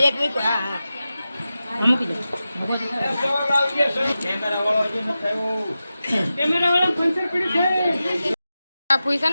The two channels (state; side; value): inverted; both; correlation -0.93